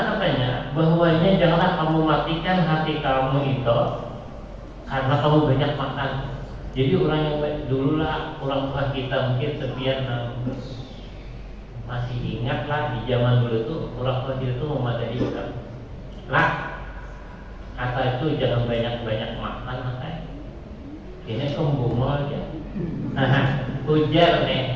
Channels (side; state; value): both; identical; correlation 1.00